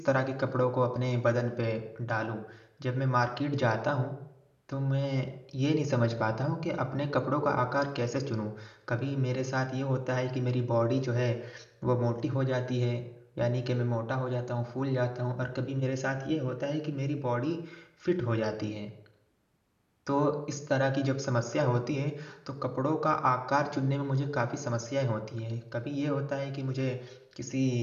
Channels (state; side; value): identical; both; correlation 1.00